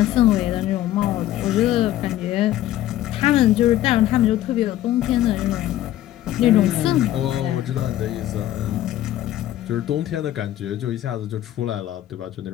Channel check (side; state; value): right; quieter; 13.5 dB